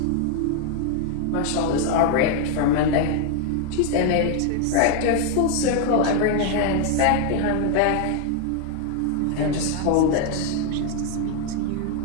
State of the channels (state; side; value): different; both; correlation 0.00